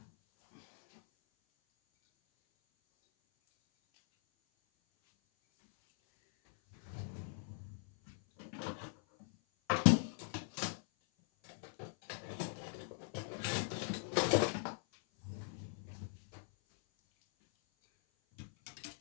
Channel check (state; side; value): silent; right; 51 dB below the other